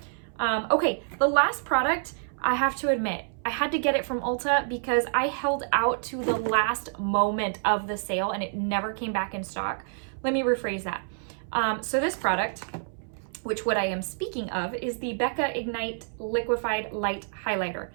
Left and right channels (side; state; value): left; silent; 60 dB below the other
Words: Okay, the last product, I have to admit, I had to get it from Ulta because I held out to the last moment of the sale and it never came back in stock. Let me rephrase that. So this product, which what I am speaking of, is the Becca Ignite Liquefied Light Highlighter.